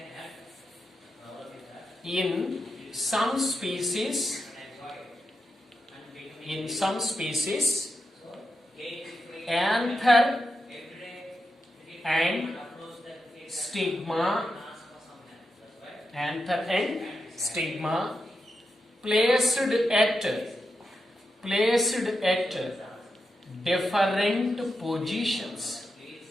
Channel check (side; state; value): both; normal; correlation 0.87